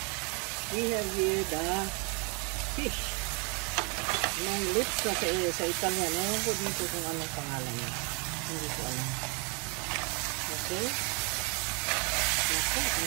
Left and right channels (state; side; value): quieter; left; 33.6 dB